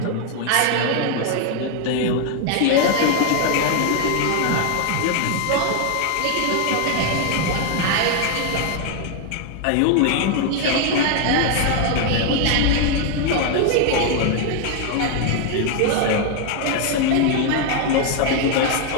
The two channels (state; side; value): different; both; correlation 0.01